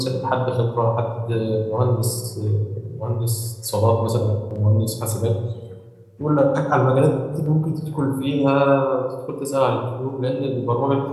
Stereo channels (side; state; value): both; identical; correlation 1.00